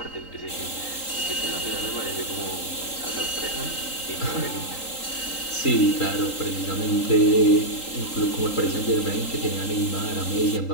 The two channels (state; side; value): late; right; 3.8 ms